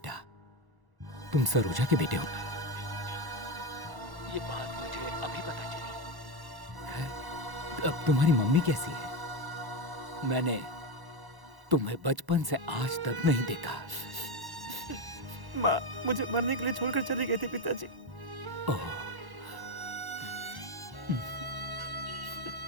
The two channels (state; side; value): late; left; 1.1 ms